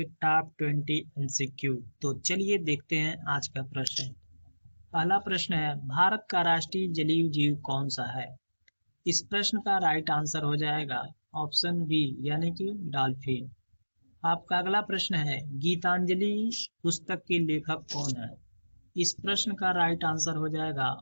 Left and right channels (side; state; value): both; inverted; correlation -1.00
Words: टॉप 20 एमसीक्यू। तो चलिए देखते हैं आज का प्रश्न। पहला प्रश्न है, भारत का राष्ट्रीय जलीय जीव कौन सा है? इस प्रश्न का राइट आंसर हो जाएगा ऑप्शन बी यानी कि डॉल्फिन। आपका अगला प्रश्न है, गीतांजलि पुस्तक के लेखक कौन है? इस प्रश्न का राइट आंसर हो जाएगा